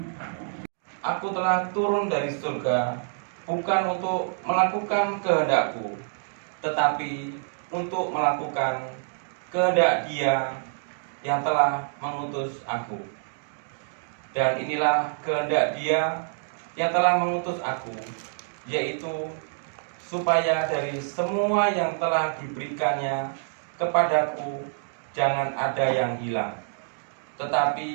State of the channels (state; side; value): silent; left; digital silence